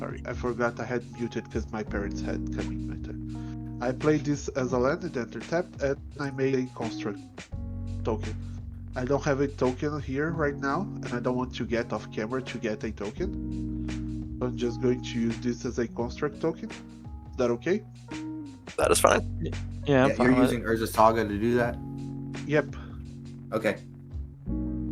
I forgot I had muted because my parents had come in my turn. I played this as a land and enter tapped, and I made a construct token. I don't have a token here right now, and I don't want to get off camera to get a token. So I'm just going to use this as a construct token. Is that okay? That is fine. Yeah, I'm Yeah, fine you're with using Urza Saga to do that? Yep. Okay.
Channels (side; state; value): both; identical; correlation 1.00